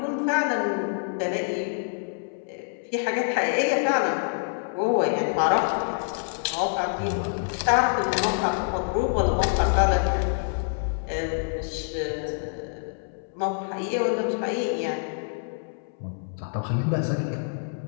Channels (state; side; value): silent; right; 61 dB below the other